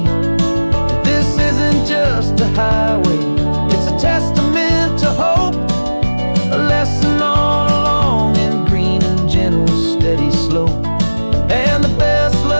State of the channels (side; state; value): both; inverted; correlation -1.00